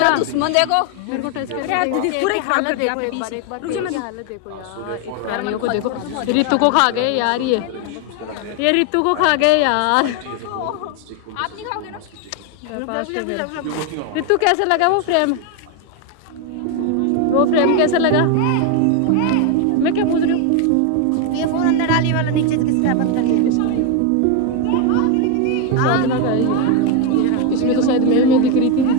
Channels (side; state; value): both; different; correlation 0.01